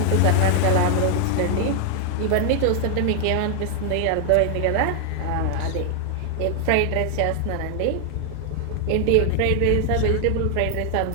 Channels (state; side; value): different; both; correlation 0.00